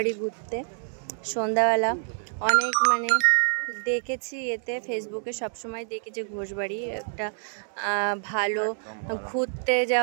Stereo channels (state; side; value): silent; left; 60 dB below the other